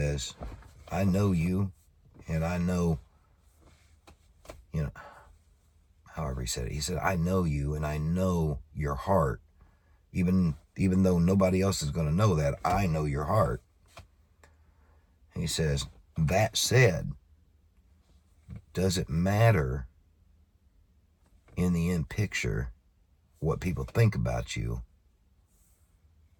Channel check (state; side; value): identical; both; correlation 1.00